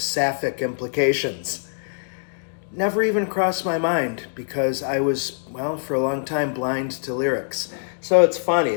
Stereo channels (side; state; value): right; silent; digital silence